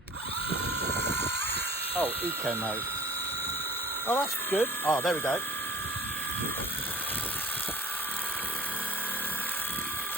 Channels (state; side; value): normal; both; correlation 0.49